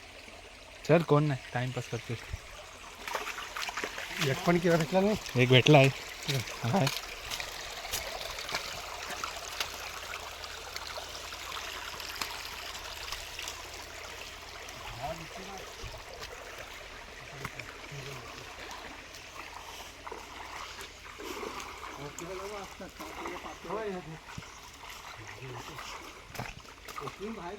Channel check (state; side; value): identical; both; correlation 1.00